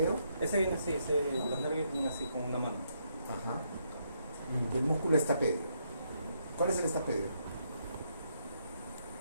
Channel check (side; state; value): both; inverted; correlation -0.76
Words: Ese viene así, los nervios vienen así con una mano. Ajá. Y el músculo estapedio. ¿Cuál es el estapedio?